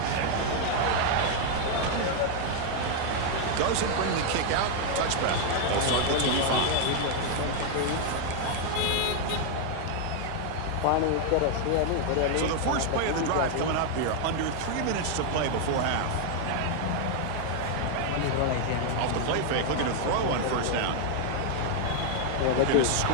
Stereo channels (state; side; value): different; both; correlation 0.00